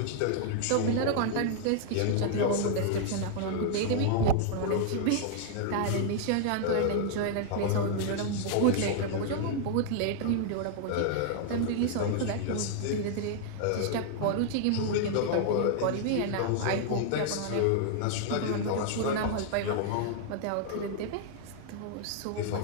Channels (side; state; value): both; different; correlation -0.01